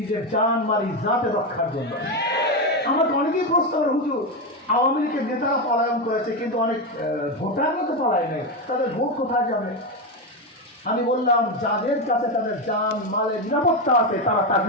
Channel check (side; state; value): both; normal; correlation 0.11